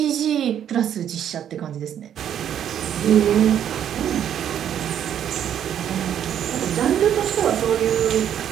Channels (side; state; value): left; quieter; 9.8 dB